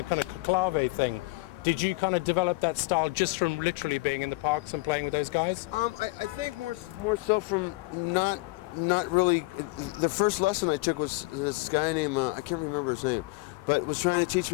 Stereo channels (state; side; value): quieter; right; 24.3 dB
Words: kind of clave thing. Did you kind of develop that style just from literally being in the parks and playing with those guys? I think more so from not really. The first lesson I took was this guy named I can't remember his name, but was trying to teach